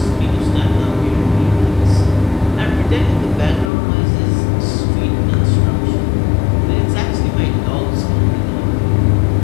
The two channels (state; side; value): drops out; right; at 3.7 s